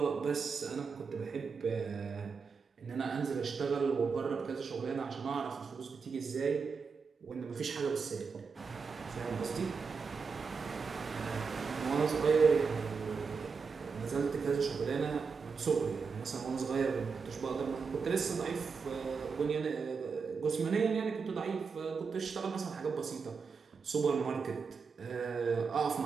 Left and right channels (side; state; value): left; quieter; 5.3 dB